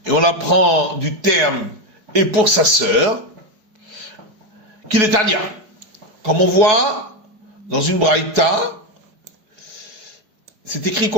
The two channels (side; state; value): left; late; 4.7 ms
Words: et on apprend du terme et pour sa sœur, qu'il est Tania. Comme on voit dans une braïta, c'est écrit